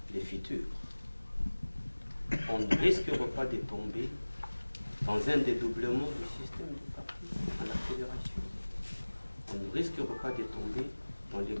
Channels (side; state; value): both; inverted; correlation -1.00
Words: le futur. On ne risquera pas de tomber dans un dédoublement du système de parti à la fédération. On ne risquera pas de tomber dans les